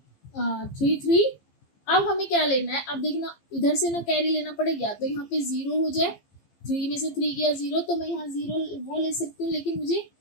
3, 3। अब हमें क्या लेना है, अब देखना इधर से ना कैरी लेना पड़ेगा, तो यहाँ पे 0 हो जाए, 3 में से 3 गया 0, तो मैं यहाँ 0 वो ले सकती हूँ, लेकिन मुझे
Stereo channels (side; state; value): right; late; 15 ms